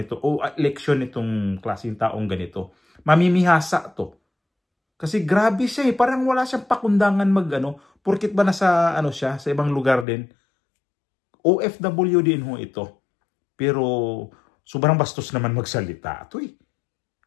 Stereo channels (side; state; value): right; drops out; at 10.1 s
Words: o eleksyon nitong klaseng taong ganito, mamimihasa to. Kasi grabe siya parang wala siyang pakundangan porkit ba nasa siya, sa ibang lugar din. OFW din ho ito. Pero sobrang bastos naman magsalita.